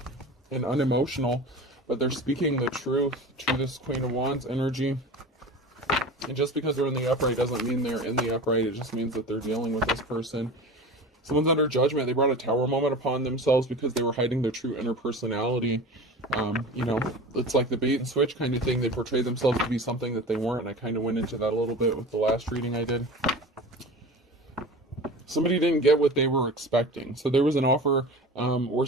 and unemotional, but they're speaking the truth to this Queen of Wands energy. And just because they're in the upright doesn't mean they're in the upright. It just means that they're dealing with this person. Someone's under judgment. They brought a tower moment upon themselves because they were hiding their true inner personality. You know, it's like the bait and switch kind of thing. They portray themselves to be something that they weren't. And I kind of went into that a little bit with the last reading I did. Somebody didn't get what they were expecting. So there was an offer or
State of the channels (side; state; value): both; normal; correlation 0.34